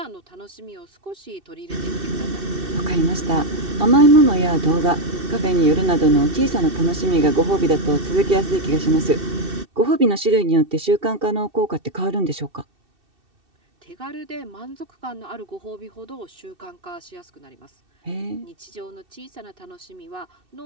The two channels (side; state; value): left; late; 2.6 ms